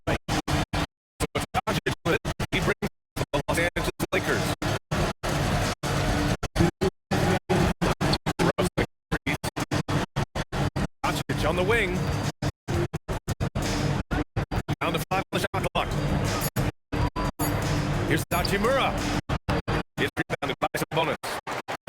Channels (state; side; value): identical; both; correlation 1.00